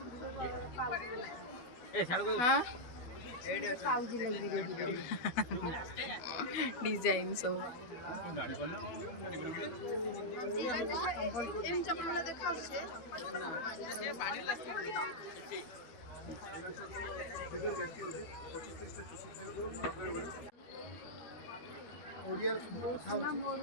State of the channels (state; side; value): late; right; 13 ms